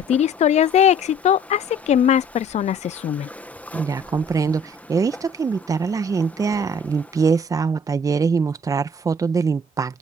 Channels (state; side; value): normal; both; correlation 0.54